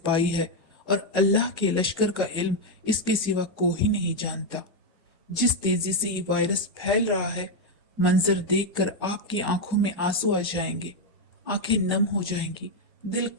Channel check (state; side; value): normal; both; correlation 0.03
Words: है और अल्लाह के लश्कर का इल्म इसके सिवा कोई नहीं जानता। जिस तेजी से ये वायरस फैल रहा है, मंजर देखकर आपकी आंखों में आंसू आ जाएंगे, आंखें नम हो जाएंगी, दिल